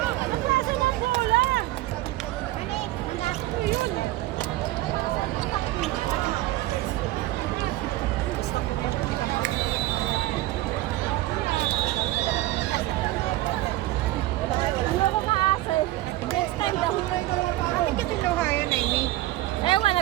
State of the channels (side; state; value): left; quieter; 16.8 dB